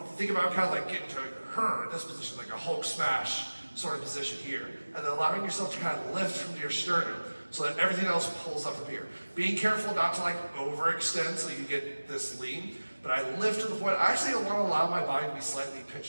to think about kind of like getting to this position, like a Hulk smash sort of position here, and then allowing yourself to kind of lift from your sternum so that everything else pulls up from here. Being careful not to like overextend so you get this lean, but I lift to the point, I actually want to allow my body to be slightly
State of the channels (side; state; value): both; inverted; correlation -1.00